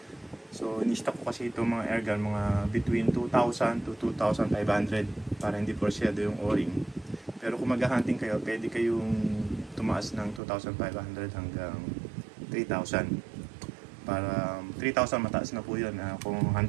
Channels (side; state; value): left; drops out; at 10.4 s